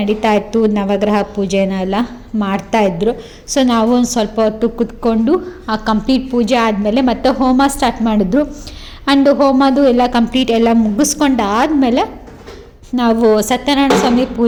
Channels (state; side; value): identical; both; correlation 1.00